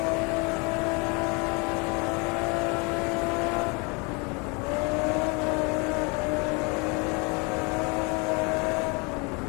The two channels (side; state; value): right; quieter; 30.6 dB